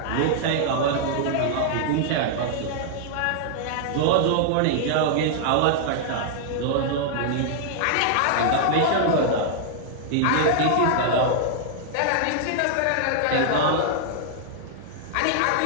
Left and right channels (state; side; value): different; both; correlation -0.01